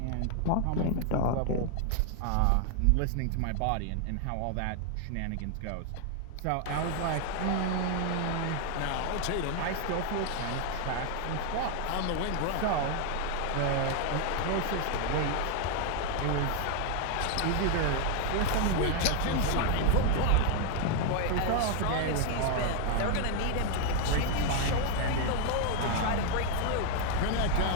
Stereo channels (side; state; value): both; different; correlation 0.00